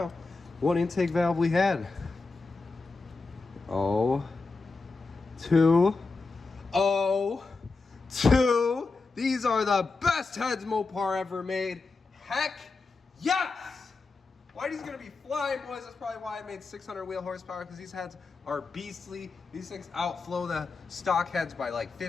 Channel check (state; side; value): quieter; right; 3.9 dB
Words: what intake valve we had. 2. These are the best heads Mopar ever made. Heck yes! Whitey's gonna be flying, boys. That's probably why I made 600 wheel horsepower, because these heads are beastly. These things outflow the stock heads by like